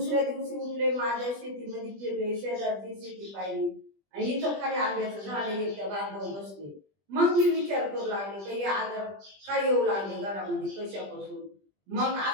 दिवशी उठले, माझ्या शेतीमध्ये फिरले, शेजारची शेती पाहिली, आणि इथं खाली आंब्याचं झाड एकट्या बांधव बसले. मग मी विचार करू लागले का हे आजार काय येऊ लागले घरामध्ये, कशापासून. मग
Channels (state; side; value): late; left; 20 ms